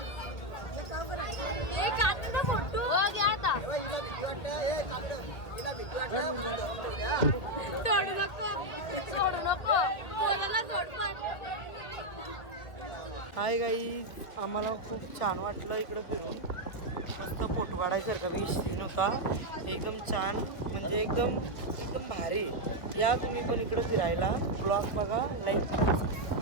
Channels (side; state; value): right; late; 2.0 ms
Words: हो घ्या आता. सोडू नको, सोडू नको, कोणाला सोड पण. हाय गाईज, आम्हाला खूप छान वाटलं इकडं फिरून. मस्त फोटो काढायसारखा बी सीन होता. एकदम छान, म्हणजे एकदम एकदम भारी. या तुम्ही पण इकडं फिरायला. ब्लॉग बघा, लाईक करा.